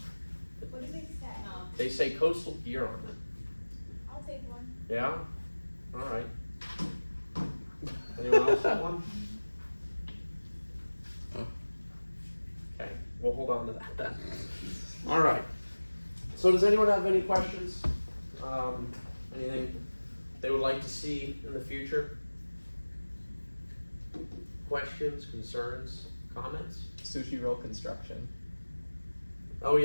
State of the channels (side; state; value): both; inverted; correlation -1.00